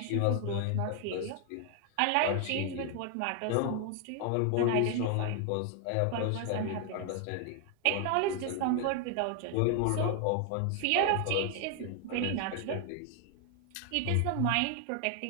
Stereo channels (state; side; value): different; both; correlation 0.00